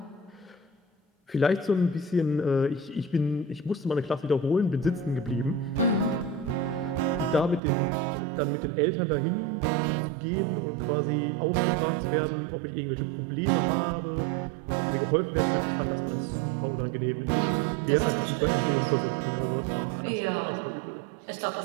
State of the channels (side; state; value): left; drops out; at 7.6 s